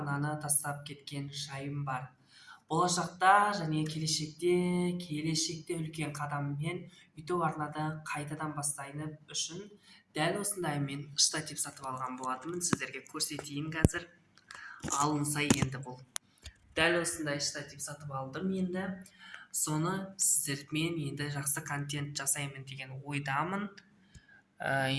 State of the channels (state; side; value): identical; both; correlation 1.00